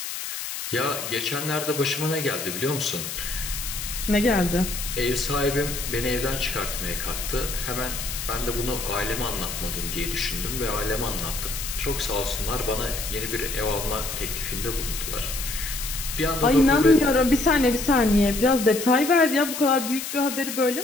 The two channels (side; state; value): left; noise; hiss, 6 dB below the sound